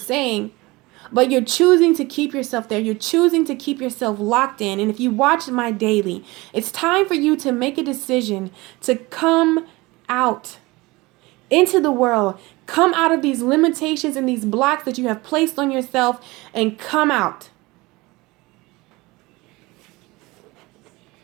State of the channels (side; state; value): left; quieter; 22.3 dB